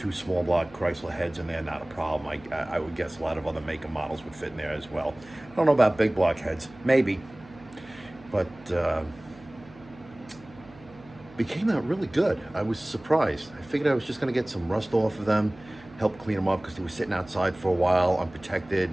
small block Chrysler heads in there, not a problem. I would guess a lot of other make and models would fit in there as well. I don't know about big block heads, maybe, but it came out really good. I was surprised. I figured I was just gonna get some rust off of them, help clean them up because they were sitting outside for a while, unprotected,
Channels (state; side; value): noise; right; hum, 22 dB below the sound